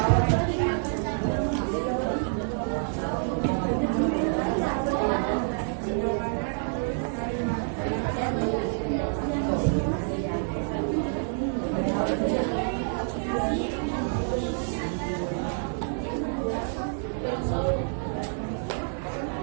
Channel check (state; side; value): silent; left; 60 dB below the other